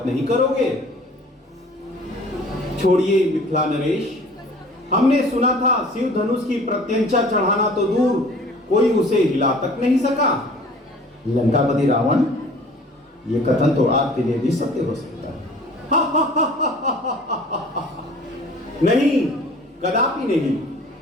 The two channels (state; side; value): normal; both; correlation 0.48